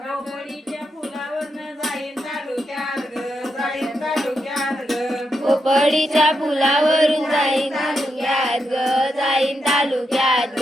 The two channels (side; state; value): both; normal; correlation 0.84